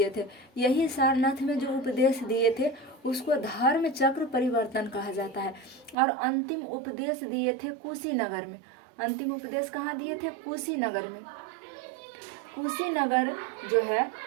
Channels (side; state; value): left; drops out; at 6.0 s